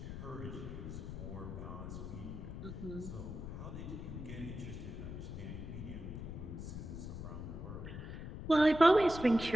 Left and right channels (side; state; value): left; noise; rumble, 7 dB below the sound